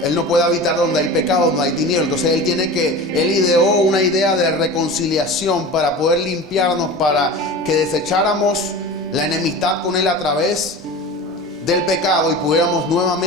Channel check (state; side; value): normal; both; correlation 0.33